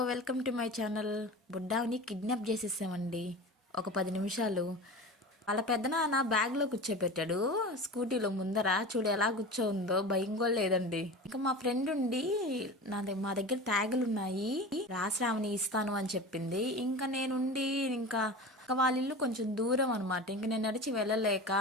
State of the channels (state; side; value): normal; both; correlation 0.32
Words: welcome to my channel. బుడ్డాని kidnap చేసేసామండి. ఒక 10 నిమిషాలు వాళ్ళ పెద్దనాన్న బ్యాగ్లో కూర్చోబెట్టాడు. స్కూటీలో ముందర చూడు ఎలా కూర్చోందో, భయం కూడా లేదండి. ఇంకా మా ఫ్రెండ్ ఉండి మా దగ్గర ట్యాగులు ఉన్నాయి, రాశ్రావణి ఇస్తాను అని చెప్పింది. ఇంకా నేనుండి ఇంకా వాళ్ళ ఇల్లు కొంచెం దూరం అనమాట. ఇంక నేను నడిచి వెళ్ళలేక